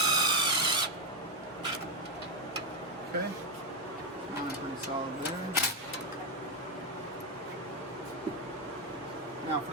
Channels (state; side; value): normal; both; correlation 0.04